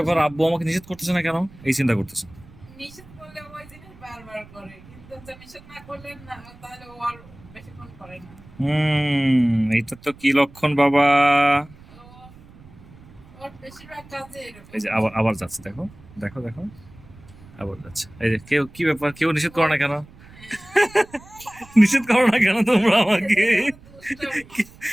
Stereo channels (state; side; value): noise; right; rumble, 22 dB below the sound